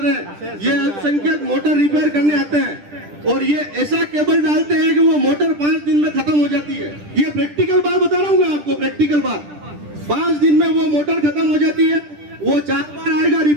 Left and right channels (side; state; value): left; late; 10 ms